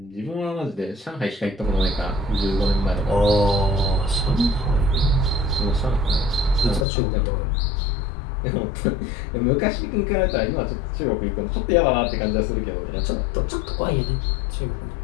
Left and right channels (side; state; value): right; drops out; at 6.9 s